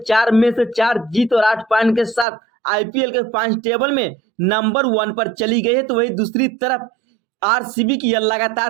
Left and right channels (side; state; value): left; drops out; at 2.2 s